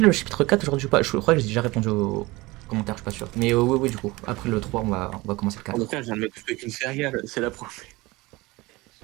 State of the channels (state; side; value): quieter; left; 21.7 dB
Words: chapitre 4 aujourd'hui ou pas? Je crois que j'ai déjà répondu aux commentaires, je suis pas sûr. Mais oui, du coup. Après le 3, on va commencer le 4. Je viens de me couper qu'une céréale, c'est la première.